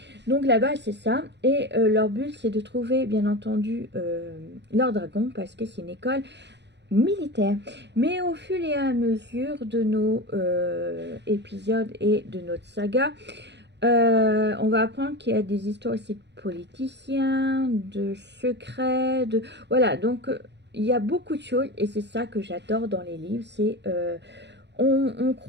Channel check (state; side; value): late; left; 0.51 ms